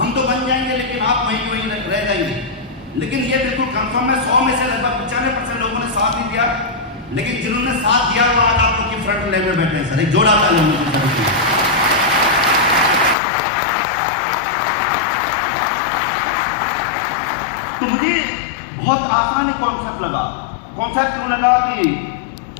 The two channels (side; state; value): right; drops out; at 13.2 s